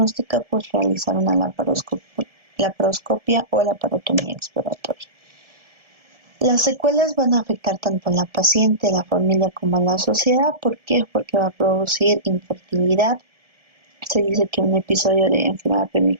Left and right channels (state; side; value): late; left; 1.7 ms